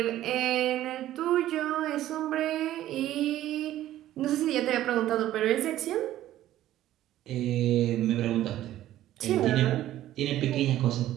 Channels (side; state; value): left; quieter; 13.5 dB